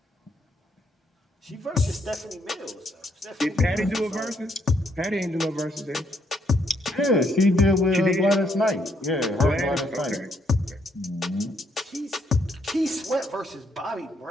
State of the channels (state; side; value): normal; both; correlation 0.72